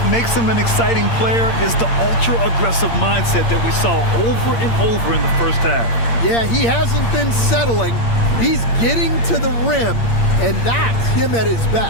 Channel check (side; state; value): right; late; 8.7 ms